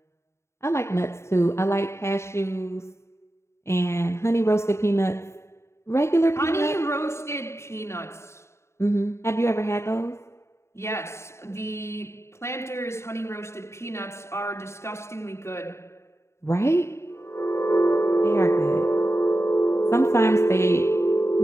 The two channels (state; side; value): late; right; 0.13 ms